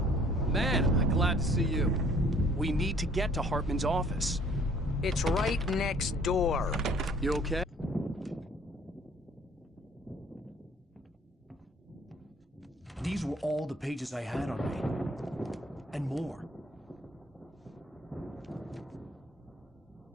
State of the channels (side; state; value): both; normal; correlation 0.57